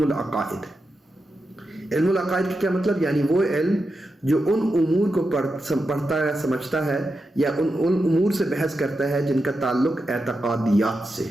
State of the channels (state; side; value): normal; both; correlation 0.88